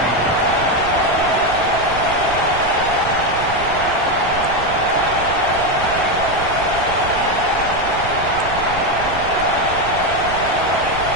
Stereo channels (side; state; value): right; noise; rumble, 11 dB below the sound